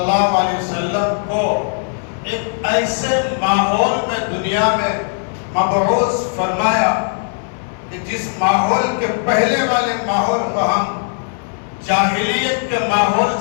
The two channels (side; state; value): right; silent; 63 dB below the other